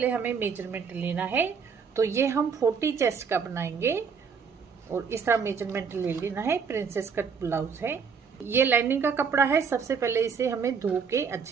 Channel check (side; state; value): left; quieter; 6.1 dB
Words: हमें मेजरमेंट लेना है। तो ये हम 40 चेस्ट का बनाएंगे और इस तरह मेजरमेंट ले लेना है। प्रिंसेस कट ब्लाउज है। ये लाइनिंग का कपड़ा है। सबसे पहले इसे हमें धो के